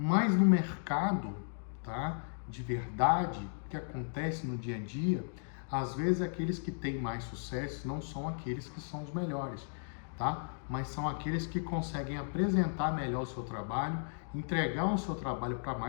no mercado, tá? De verdade, que acontece no dia a dia, às vezes aqueles que têm mais sucesso não são aqueles que são os melhores, tá? Mas são aqueles que conseguem apresentar melhor o seu trabalho, entregar o seu trabalho para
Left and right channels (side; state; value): right; silent; digital silence